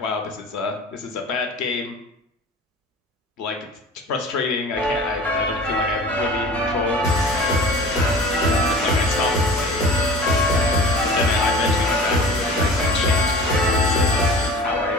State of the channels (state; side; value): normal; both; correlation 0.39